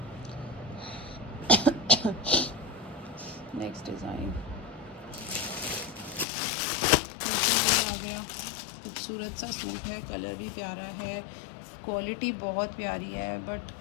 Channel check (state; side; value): drops out; right; at 6.2 s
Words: नेक्स्ट डिज़ाइन फिर से वही आ गया, खूबसूरत सा सूट है, कलर भी प्यारा है, क्वालिटी बहुत प्यारी है, बट